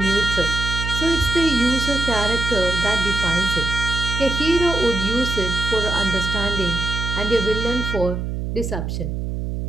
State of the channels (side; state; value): right; noise; hum, 3 dB below the sound